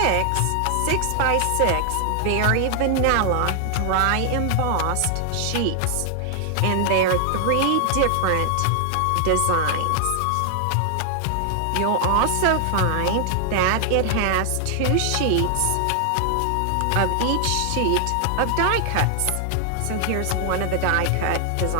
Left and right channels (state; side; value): different; both; correlation 0.00